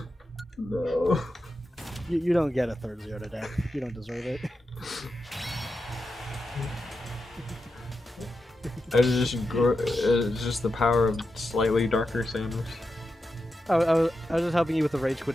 No. you don't get a third zero to death. You don't deserve it. It's just the power of slightly darker Samus. I was just helping you with the rage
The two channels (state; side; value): normal; both; correlation 0.88